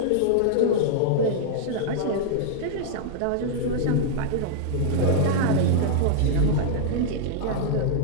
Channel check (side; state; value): both; different; correlation -0.01